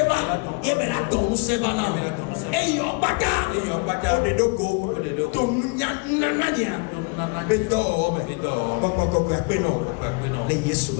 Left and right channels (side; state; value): right; quieter; 30.9 dB